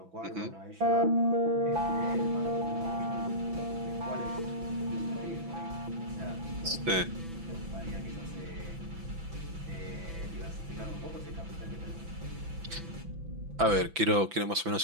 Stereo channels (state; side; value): late; left; 6.0 ms